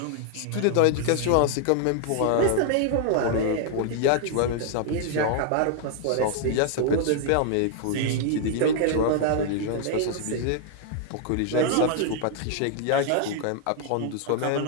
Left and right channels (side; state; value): both; different; correlation 0.00